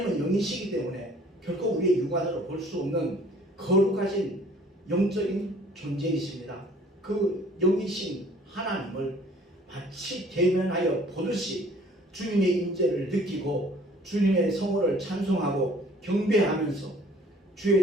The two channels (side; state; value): both; normal; correlation 0.54